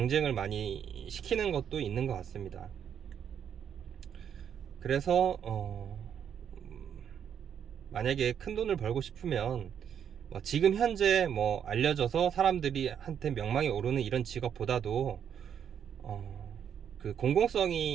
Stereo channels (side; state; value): left; quieter; 8.4 dB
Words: 많이 시키는 것도 있는 것 같습니다. 그래서 만약에 큰 돈을 벌고 싶으면 지금 현재 뭐 알려져서 사람들이 한테 명망이 오르는 이런 직업보다도 그